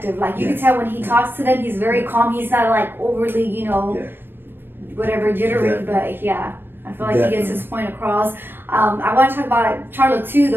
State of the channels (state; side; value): late; left; 0.098 ms